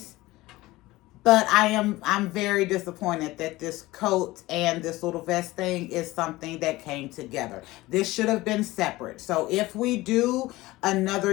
But I'm very disappointed that this coat and this little vest thing is something that came together. This should have been separate. So if we do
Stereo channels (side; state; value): right; quieter; 19.0 dB